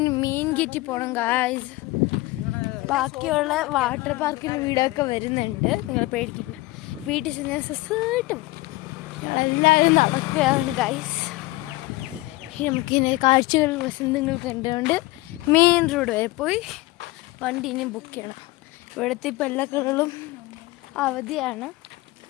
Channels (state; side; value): quieter; right; 20.3 dB